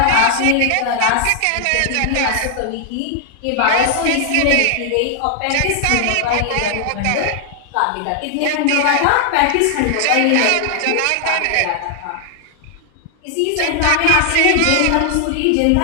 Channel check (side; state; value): both; different; correlation 0.00